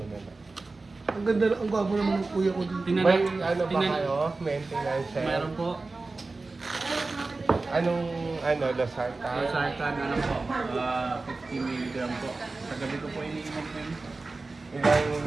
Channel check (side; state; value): left; quieter; 3.6 dB